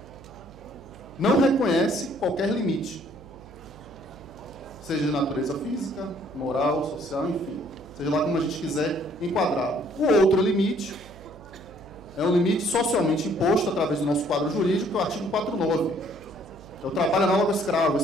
não reconhece qualquer limite, seja de natureza física, moral, social, enfim, seja lá como a gente quiser enquadrá-lo. O outro limite é um limite socialmente imposto através do nosso quadro jurídico, que é o artigo 49. É o trabalho análogo ao escravo.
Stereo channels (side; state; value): right; noise; hum, 19 dB below the sound